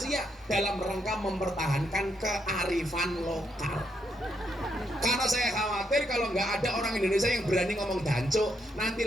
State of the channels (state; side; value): normal; both; correlation 0.78